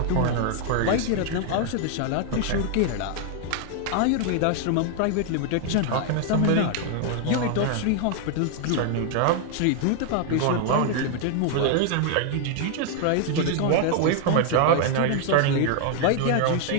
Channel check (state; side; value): different; both; correlation 0.00